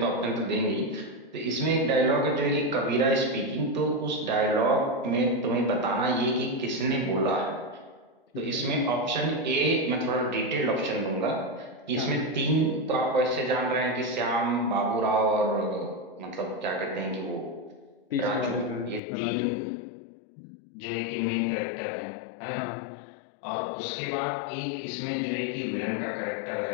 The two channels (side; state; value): right; drops out; at 19.0 s